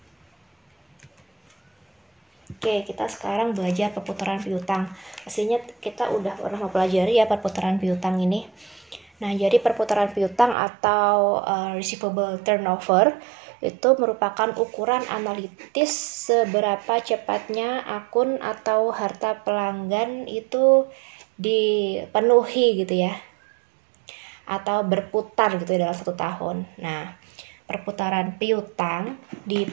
oke, kita sekarang belajar perputaran piutang. Pastinya kita udah pernah mempelajari ya perputaran piutang ini. Nah, jadi perputaran piutang atau receivable turnover itu merupakan ukuran analitis seberapa cepatnya akun atau harta pelanggan itu dipenuhi gitu ya, atau berputar gitu ya dalam 1 tahun. Nah, perputaran piutang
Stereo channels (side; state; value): left; drops out; at 10.6 s